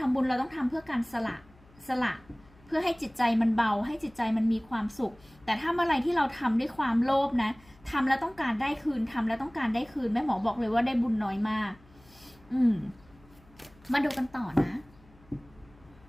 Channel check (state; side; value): noise; left; hum, 27 dB below the sound